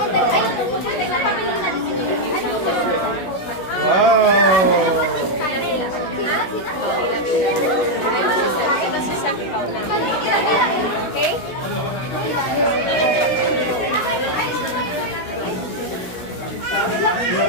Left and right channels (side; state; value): right; late; 16 ms